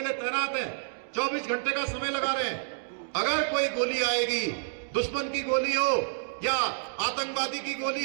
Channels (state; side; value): silent; left; digital silence